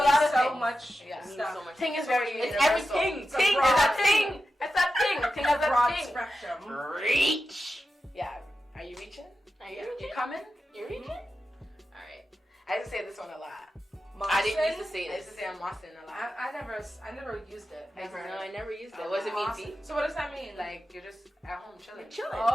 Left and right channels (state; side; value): normal; both; correlation 0.91